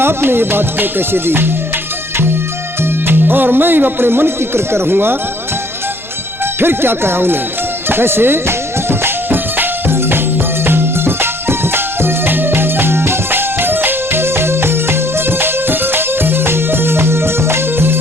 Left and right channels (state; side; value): normal; both; correlation 0.61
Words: ये बात को कैसे दी, और मैं अपने मन की कर रहूंगा। फिर क्या कहा उन्हें, कैसे?